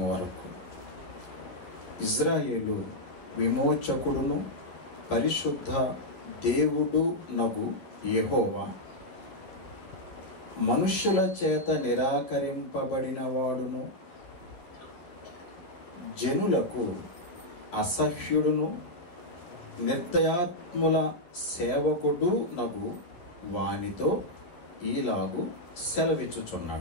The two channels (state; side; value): late; right; 11 ms